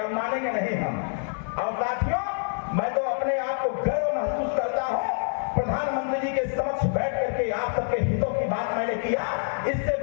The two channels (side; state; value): right; silent; digital silence